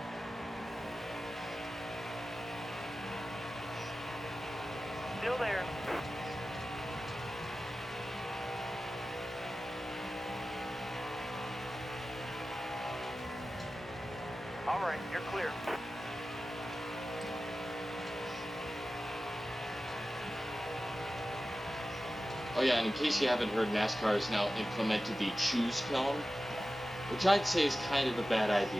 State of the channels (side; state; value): both; normal; correlation 0.95